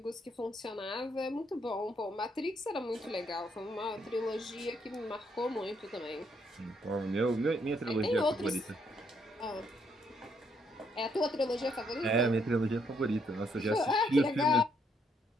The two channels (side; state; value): both; normal; correlation 0.73